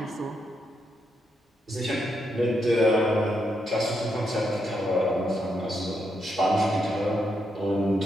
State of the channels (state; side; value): normal; both; correlation 0.81